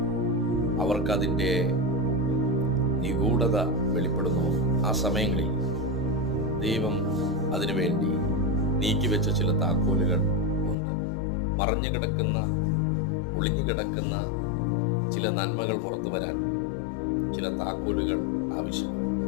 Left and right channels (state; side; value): drops out; right; at 10.8 s